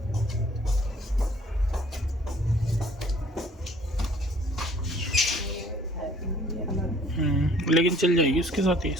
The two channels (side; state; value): both; normal; correlation 0.57